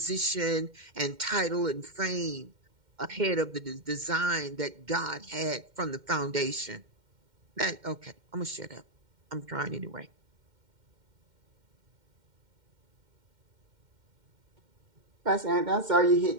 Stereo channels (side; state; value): left; late; 2.1 ms